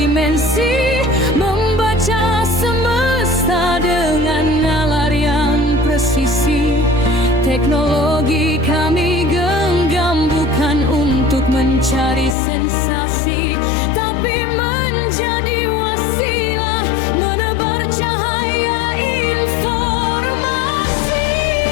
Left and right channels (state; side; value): drops out; right; at 12.4 s